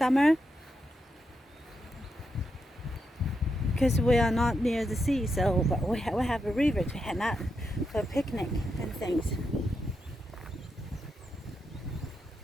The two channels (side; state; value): both; normal; correlation 0.84